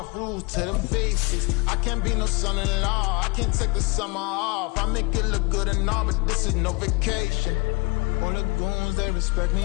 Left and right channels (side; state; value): right; quieter; 27.8 dB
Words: Rules to the basics. I can't be no son-in-law. I can't take the summer off. I make it look good and all, but this is no vacation. All the goons, they respect me